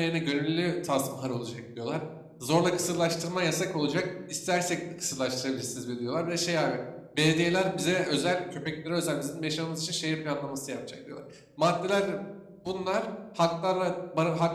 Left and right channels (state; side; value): identical; both; correlation 1.00